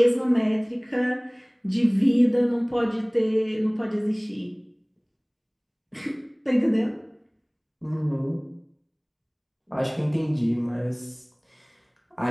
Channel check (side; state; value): both; identical; correlation 1.00